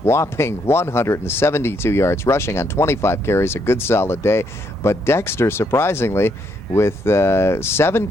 whopping 172 yards rushing on 25 carries, a good solid day. But Dexter, surprisingly, with 7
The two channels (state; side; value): normal; both; correlation 0.74